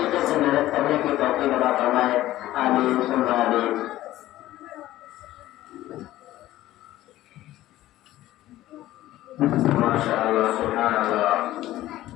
سے محنت کرنے کی توفیق عطا فرمائے۔ آمین ثم آمین۔ ماشاء اللہ، سبحان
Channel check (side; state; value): right; quieter; 15.1 dB